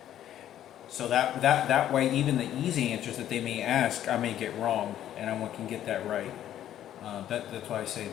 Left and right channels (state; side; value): quieter; right; 11.5 dB